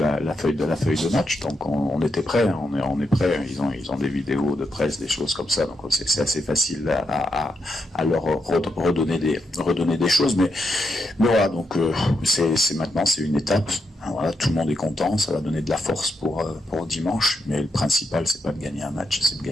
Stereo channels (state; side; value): normal; both; correlation 0.83